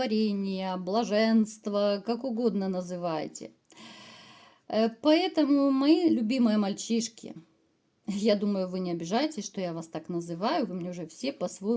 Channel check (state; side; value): identical; both; correlation 1.00